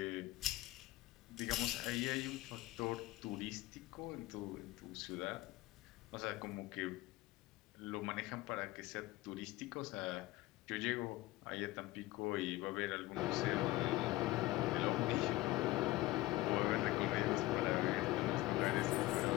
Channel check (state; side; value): quieter; right; 18.5 dB